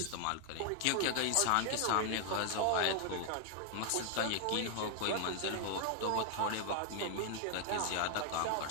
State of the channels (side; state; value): both; different; correlation 0.00